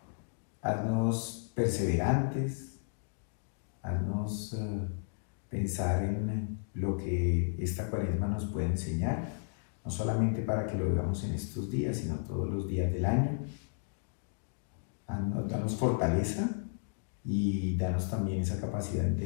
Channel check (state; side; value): silent; right; digital silence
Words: Haznos perseverantes, haznos pensar en lo que esta Cuaresma nos puede enseñar, no solamente para que lo veamos en estos días, sino todos los días del año. Danos fortaleza y danos también esa capacidad de